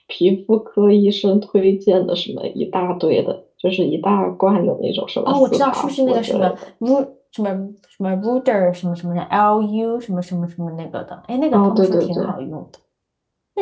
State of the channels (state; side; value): identical; both; correlation 1.00